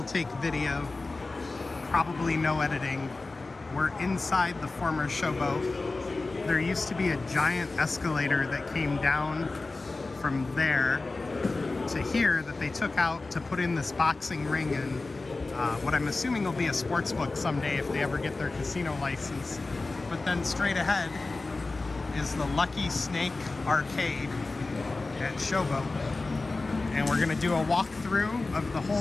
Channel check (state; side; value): quieter; right; 3.5 dB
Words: take video, probably no editing. We're inside the former Showboat. There used to be a giant escalator that came down from there to here that they took out to put in this boxing ring and what I'm assuming will be a sports book someday if they ever get their casino license. But then straight ahead is the Lucky Snake Arcade at Showboat. And we're gonna do a walkthrough of the